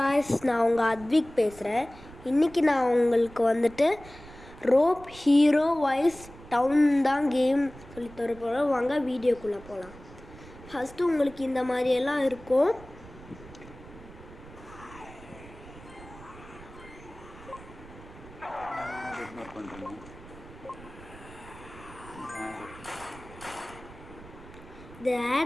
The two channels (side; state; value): right; noise; rumble, 18 dB below the sound